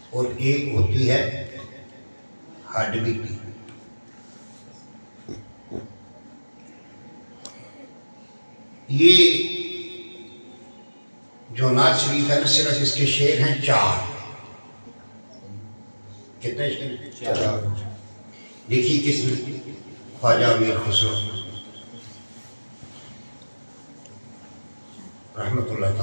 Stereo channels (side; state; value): both; inverted; correlation -1.00